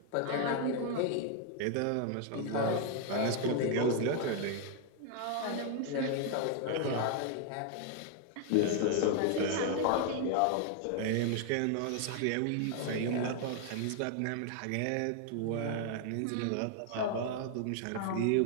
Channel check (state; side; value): different; both; correlation 0.00